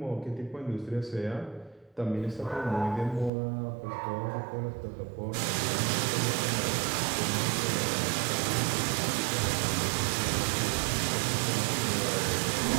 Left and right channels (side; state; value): left; drops out; at 3.3 s